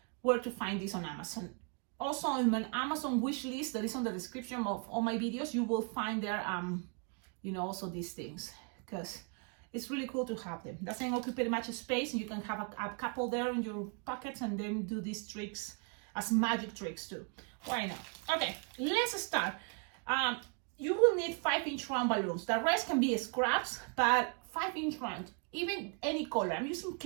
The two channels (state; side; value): quieter; left; 38.7 dB